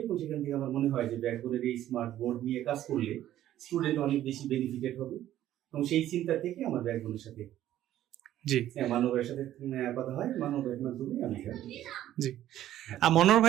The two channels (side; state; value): left; quieter; 12.7 dB